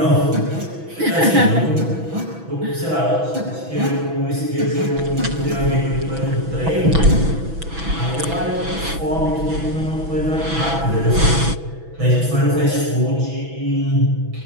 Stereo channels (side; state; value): left; late; 6.1 ms